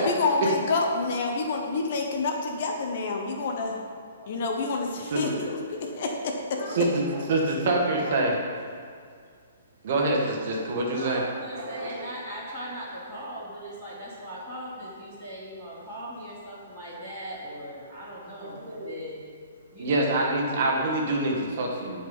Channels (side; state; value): both; inverted; correlation -0.49